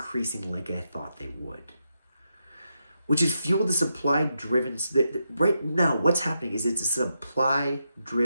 like I thought they would, which has fueled the supply-driven. Right now, what's happening is it's a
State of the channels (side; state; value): both; inverted; correlation -0.84